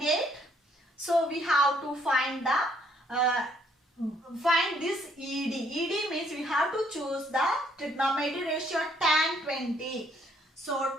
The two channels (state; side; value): normal; both; correlation 0.67